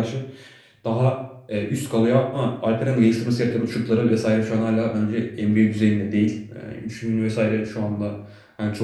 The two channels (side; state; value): both; identical; correlation 1.00